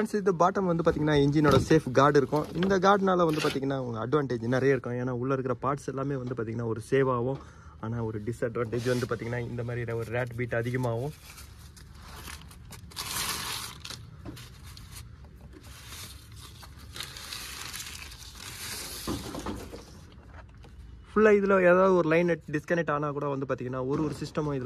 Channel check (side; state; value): both; identical; correlation 1.00